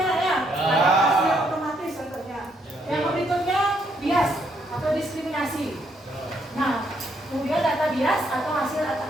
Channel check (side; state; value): both; normal; correlation 0.73